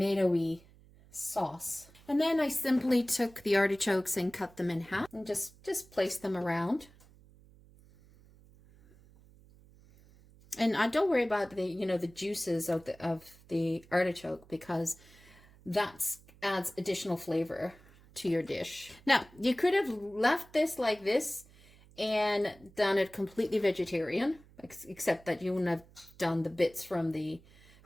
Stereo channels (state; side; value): noise; right; hum, 25 dB below the sound